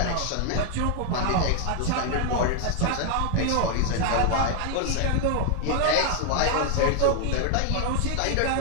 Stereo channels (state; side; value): different; both; correlation 0.00